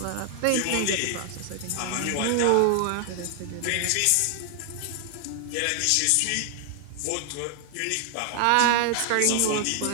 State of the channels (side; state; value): both; different; correlation 0.00